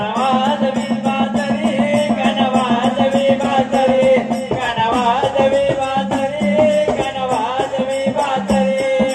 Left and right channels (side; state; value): both; identical; correlation 1.00